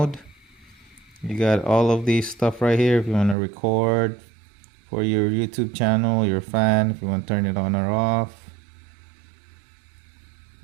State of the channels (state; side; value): drops out; left; at 3.4 s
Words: You got all of these stuff right here if you want to record for your YouTube channel, your fan, if you want to turn it on or off.